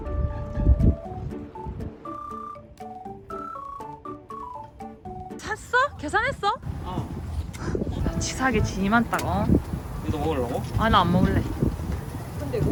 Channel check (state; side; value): identical; both; correlation 1.00